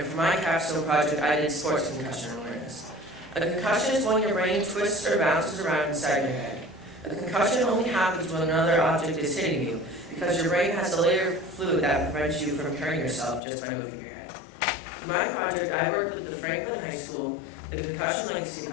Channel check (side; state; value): right; drops out; at 13.4 s